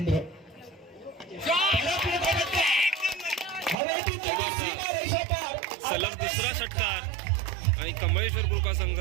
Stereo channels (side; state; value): left; drops out; at 3.8 s